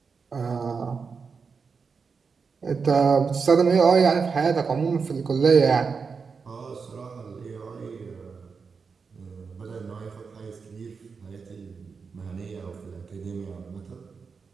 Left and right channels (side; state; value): left; quieter; 5.3 dB